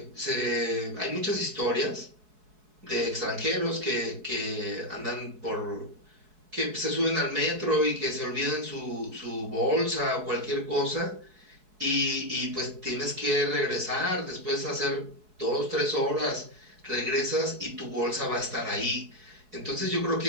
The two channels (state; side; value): late; left; 4.7 ms